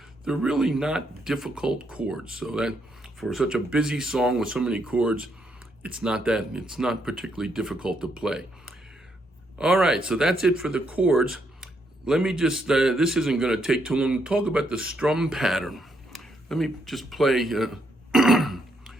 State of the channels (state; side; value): normal; both; correlation 0.76